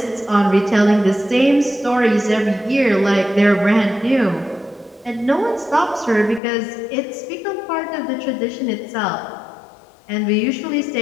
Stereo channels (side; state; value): right; drops out; at 6.4 s